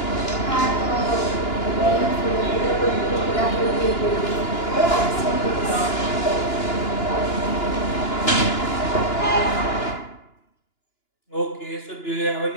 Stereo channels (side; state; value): right; late; 2.9 ms